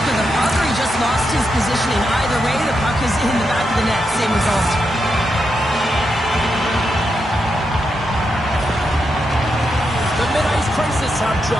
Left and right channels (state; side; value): normal; both; correlation 0.84